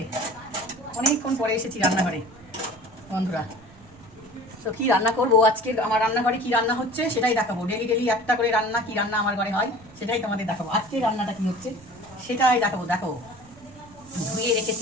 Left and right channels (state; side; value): noise; right; rumble, 23 dB below the sound